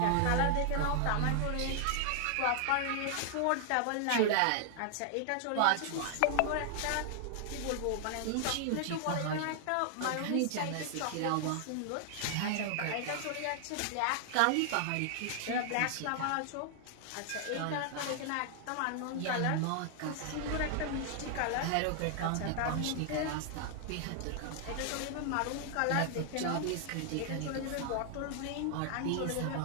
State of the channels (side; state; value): both; different; correlation 0.00